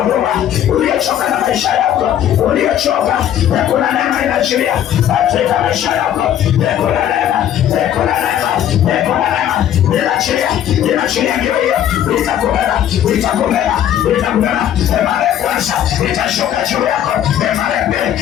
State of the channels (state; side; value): quieter; right; 10.7 dB